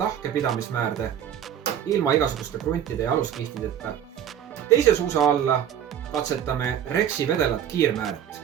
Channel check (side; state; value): left; quieter; 9.6 dB